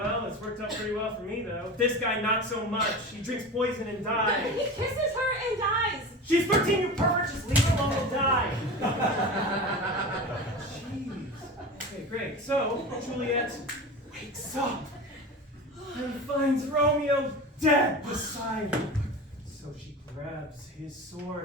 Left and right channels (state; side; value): normal; both; correlation 0.30